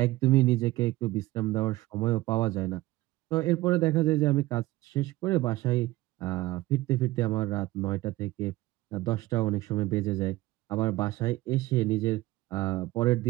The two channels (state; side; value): quieter; left; 18.0 dB